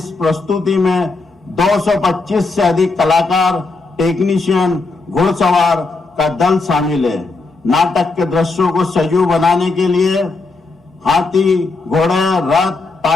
प्रस्तुति में 225 से अधिक कलाकार, टेक्नीशियन, घुड़सवार का दल शामिल है। नाटक के दृश्यों को सजीव बनाने के लिए हाथी, घोड़े, रथ,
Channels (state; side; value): quieter; right; 3.7 dB